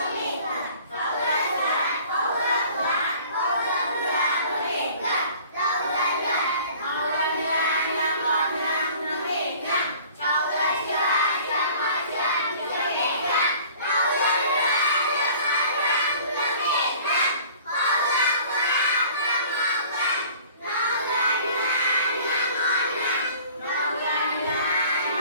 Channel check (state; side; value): inverted; both; correlation -0.48